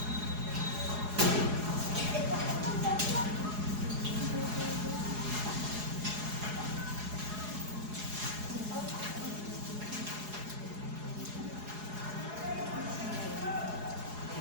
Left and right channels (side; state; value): left; late; 4.8 ms